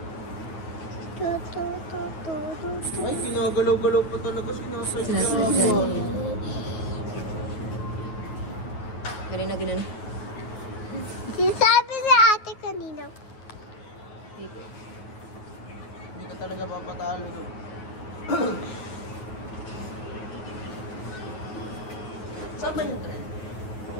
Ay, kinagalaw-galaw pa talaga sinasay. Galing na ginan. Sinasabi ni ate kanina. Hindi ka talaga papatalo doon. Saan ba yung tren?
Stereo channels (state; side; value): late; right; 9.4 ms